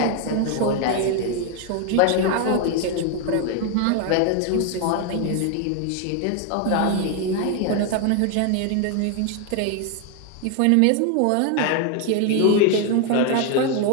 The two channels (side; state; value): both; different; correlation 0.01